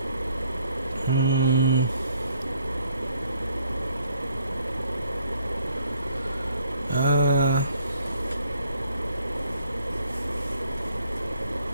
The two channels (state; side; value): inverted; both; correlation -0.65